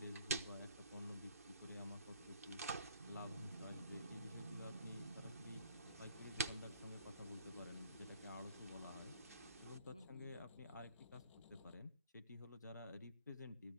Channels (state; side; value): inverted; both; correlation -0.59